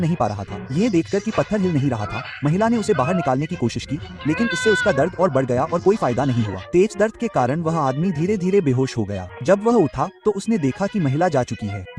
नहीं पा रहा था। ये देखकर कि पत्थर हिल नहीं रहा था, महिला ने उसे बाहर निकालने की कोशिश की, लेकिन इससे उसका दर्द और बढ़ गया और कोई फायदा नहीं हुआ। तेज दर्द के कारण वह आदमी धीरे धीरे बेहोश हो गया। जब वह उठा तो उसने देखा कि महिला जा चुकी है।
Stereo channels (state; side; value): identical; both; correlation 1.00